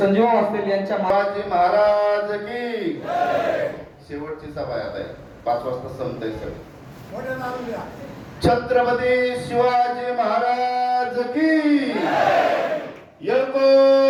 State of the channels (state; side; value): identical; both; correlation 1.00